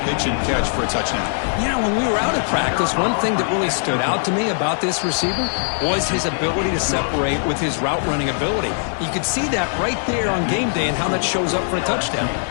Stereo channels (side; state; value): right; silent; digital silence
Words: pitch and catch for a touchdown. Yeah, when we were out at practice, one thing that really stood out to me about this receiver was his ability to separate with his route running ability. You could see that right there on game day and how that shows up for a touchdown.